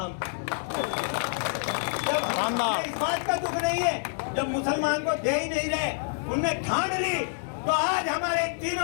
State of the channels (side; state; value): right; silent; digital silence